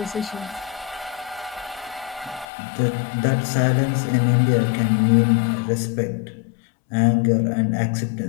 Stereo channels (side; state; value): right; drops out; at 2.5 s